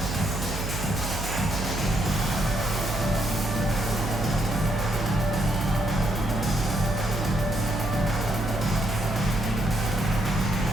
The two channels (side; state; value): right; noise; hum, 5 dB below the sound